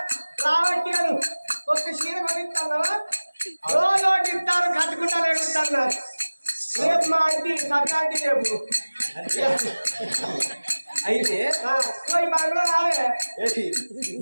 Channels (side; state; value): both; inverted; correlation -1.00